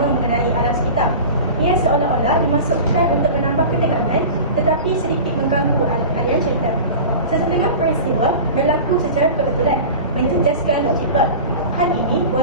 mengenai alam sekitar. Ia seolah-olah dimasukkan untuk menambah ketegangan tetapi sedikit mengganggu aliran cerita. Sesetengah peristiwa berlaku secara kebetulan, menjejaskan logik plot. Hal ini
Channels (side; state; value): both; inverted; correlation -0.33